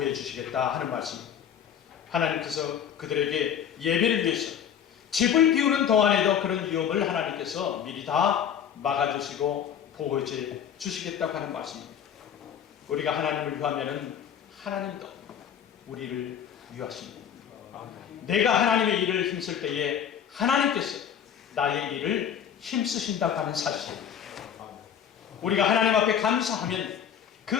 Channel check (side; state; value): right; quieter; 8.7 dB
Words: 주시겠다 하는 말씀입니다. 하나님께서 그들에게 예배를 위해서 집을 비우는 동안에도 그런 위험을 하나님께서 미리 다 막아주시고 보호해 주시겠다고 하는 말씀입니다. 우리가 하나님을 위하면은 하나님도 우리를 위하십니다. 내가 하나님의 일을 힘쓸 때에 하나님께서 나의 일을 힘쓰신다고 하는 사실, 우리가 하나님 앞에 감사하면 그